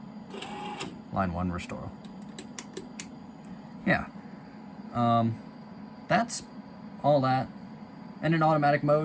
line 1 restore. Yeah. That's all that. And in automatic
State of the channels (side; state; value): both; identical; correlation 1.00